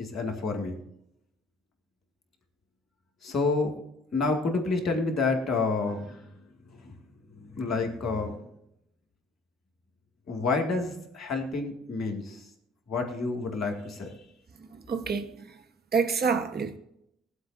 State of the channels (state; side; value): normal; both; correlation 0.52